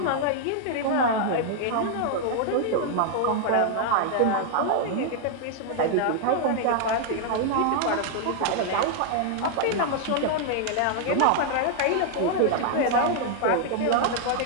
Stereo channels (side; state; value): both; different; correlation 0.00